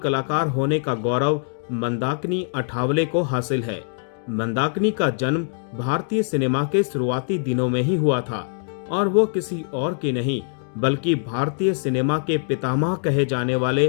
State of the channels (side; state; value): right; silent; digital silence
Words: होने का गौरव मंदाकिनी अठावले को हासिल है। मंदाकिनी का जन्म भारतीय सिनेमा के शुरुआती दिनों में ही हुआ था और वो किसी और की नहीं बल्कि भारतीय सिनेमा के पितामह कहे जाने वाले